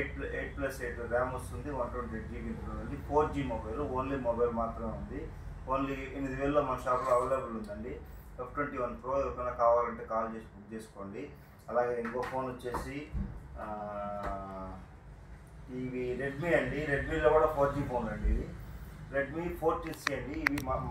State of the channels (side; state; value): both; identical; correlation 1.00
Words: ర్యామ్ వస్తుంది, 128GB ఉంటుంది. 4G మొబైల్, ఓన్లీ మొబైల్ మాత్రమే ఉంది. ఓన్లీ 8,000లో మన షాప్లో అవైలబుల్ ఉందండి. F21 Pro ఎవరికైనా కావాలంటే కాల్ చేసి బుక్ చేసుకోండి. అలాగే ఇంకో ఫోన్ వచ్చేసి ఇవి రెడ్మీ అండి. రెడ్మీలో కూడా 4G ఫోన్ అండి. ఇది రెడ్మీ 14C అండి. ఇవి